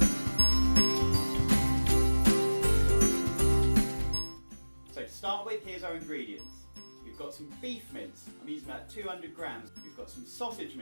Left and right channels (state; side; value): inverted; both; correlation -1.00